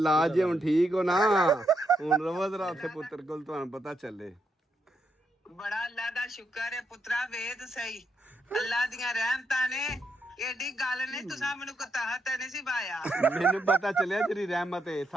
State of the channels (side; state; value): both; normal; correlation 0.80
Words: ਜੇ ਹੁਣ ਠੀਕ ਹੋ ਨਾ? ਹੁਣ ਰਵੋ ਜ਼ਰਾ ਉੱਥੇ ਪੁੱਤਰ ਕੋਲ, ਤੁਹਾਨੂੰ ਪਤਾ ਚੱਲੇ। ਬੜਾ ਅੱਲਾ ਦਾ ਸ਼ੁਕਰ ਹੈ ਪੁੱਤਰਾ, ਵੇਦ ਸਹੀ ਅੱਲਾ ਦੀਆਂ ਰਹਿਮਤਾਂ ਨੇ। ਏਡੀ ਗੱਲ ਨਹੀਂ ਤੁਸੀਂ ਮੈਨੂੰ ਕਤਾਹਤ ਨਹੀਂ ਸੀ ਪਾਇਆ। ਮੈਨੂੰ ਪਤਾ ਚੱਲਿਆ ਤੇਰੀ ਰਹਿਮਤ ਹੈ।